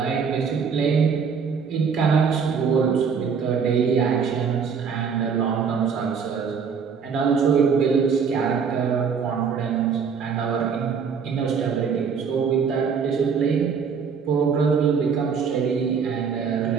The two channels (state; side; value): quieter; left; 6.3 dB